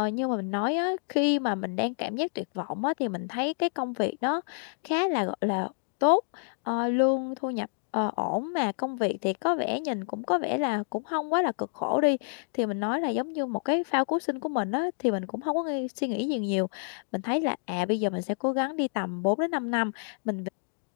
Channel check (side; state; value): right; silent; digital silence